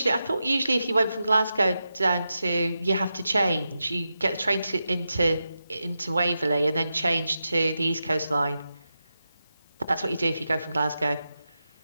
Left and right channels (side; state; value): both; inverted; correlation -0.89